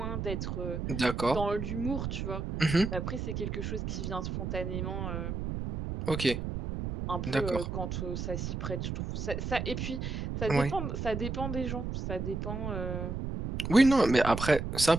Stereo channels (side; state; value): right; noise; rumble, 4 dB below the sound